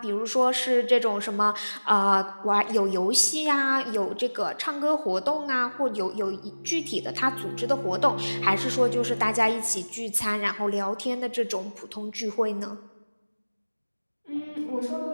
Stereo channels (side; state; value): both; inverted; correlation -1.00